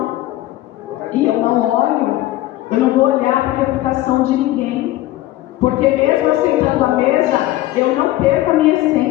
E eu não vou olhar para a reputação de ninguém. Porque mesmo eu sentando à mesa, eu não perco a minha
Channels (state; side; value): quieter; right; 16.0 dB